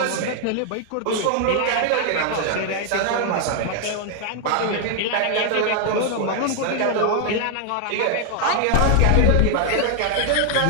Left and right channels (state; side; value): different; both; correlation 0.00